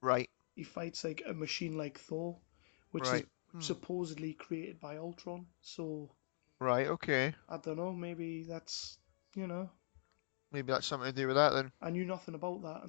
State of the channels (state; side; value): silent; right; digital silence